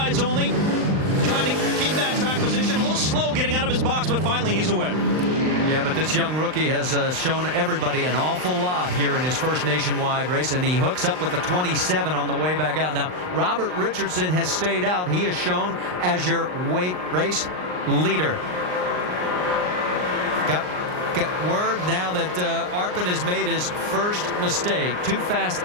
only, trying to keep that track position. A little slow getting out of his box, but finally he's away. Yeah, but this young rookie has shown everybody an awful lot here in his first nationwide race, and he hooks up with the 27 on the way back out. Now, Robert Richardson has stayed out. He is shown as your race leader. Got word now that Arpin has made his first mistake. Too fast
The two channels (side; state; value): left; late; 39 ms